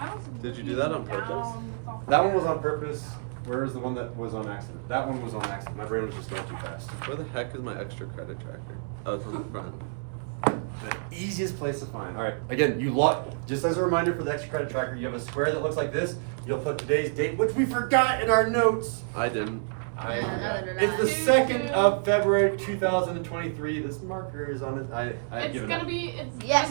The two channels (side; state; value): left; silent; digital silence